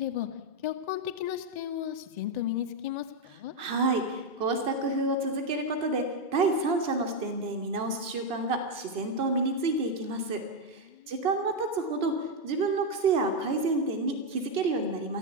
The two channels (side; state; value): left; late; 2.9 ms